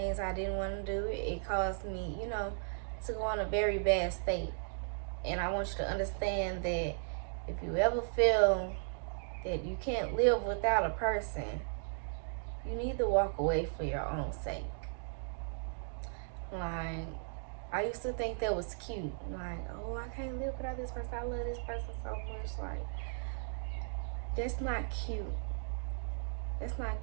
I didn't want to do. It caused me, to go in a very bad state. And I want you to understand that if you ever feel that you can't live without a person, you need to walk away for your own sake. Like, I used to think that was cute. Like, oh, I can't live without this person. I love this person so much. Like, that's not cute. That's not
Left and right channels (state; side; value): silent; left; digital silence